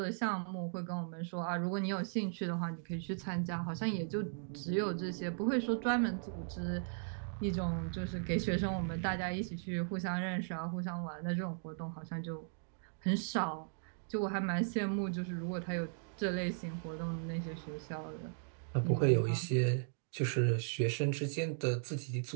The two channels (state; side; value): silent; left; digital silence